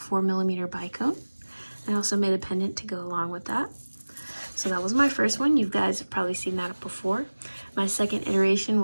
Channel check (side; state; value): both; inverted; correlation -1.00